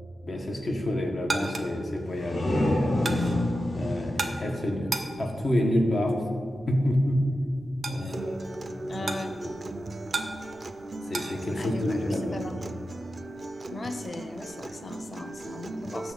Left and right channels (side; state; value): right; noise; rumble, 28 dB below the sound